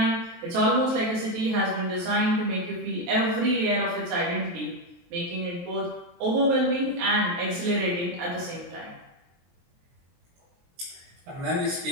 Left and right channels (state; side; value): late; left; 23 ms